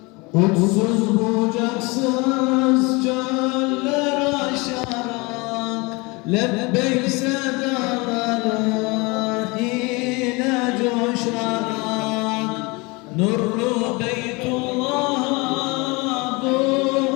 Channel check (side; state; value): right; quieter; 26.3 dB